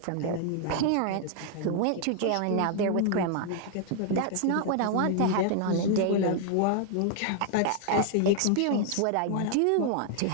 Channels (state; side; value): different; both; correlation 0.00